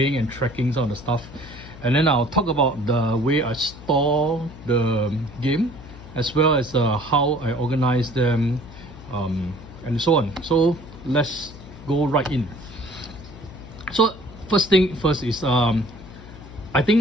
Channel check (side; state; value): left; noise; hum, 17 dB below the sound